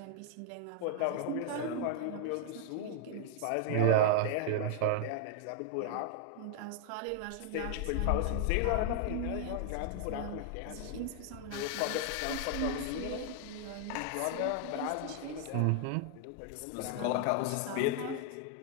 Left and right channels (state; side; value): different; both; correlation 0.00